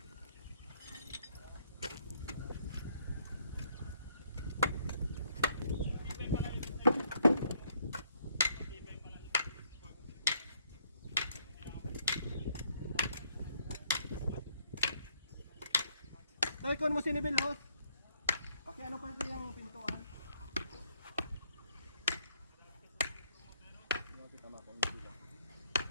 Tay, kung mo sinibil, host. Okay, ano pa ito yung pintuan?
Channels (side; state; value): both; inverted; correlation -0.68